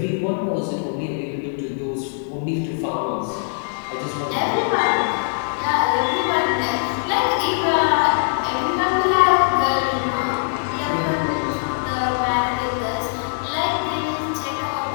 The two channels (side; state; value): right; silent; digital silence